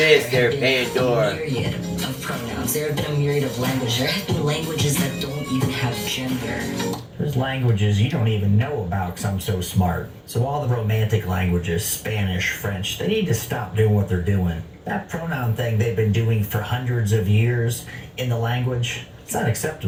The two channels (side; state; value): both; identical; correlation 1.00